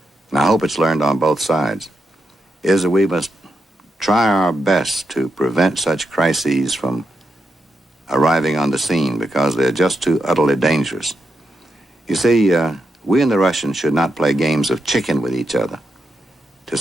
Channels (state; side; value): normal; both; correlation 0.85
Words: and I hope it's learned on both sides, is that we must try our best to prevent such crises from arriving on the scene because they're just too utterly dangerous. You see, we and the Russians should not play games of chicken with each other to